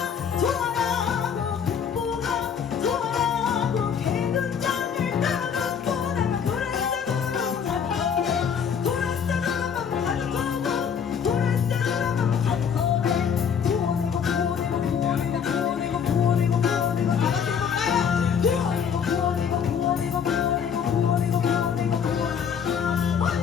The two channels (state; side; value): quieter; right; 7.3 dB